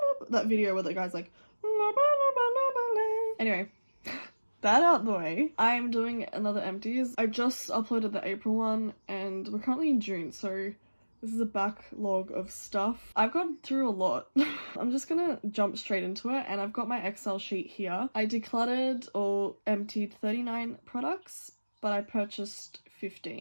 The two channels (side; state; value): both; inverted; correlation -1.00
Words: loba. That video where the guy's like, loba loba loba lay. Anyway. That out the way, I'm doing another Empties. I just uploaded the April one and we're currently in June, so this is a backlog of stuff. I've gone through a lot. I'm just gonna jump straight into it, and I've got my Excel sheet here. I decluttered or emptied 39 products, but I purchased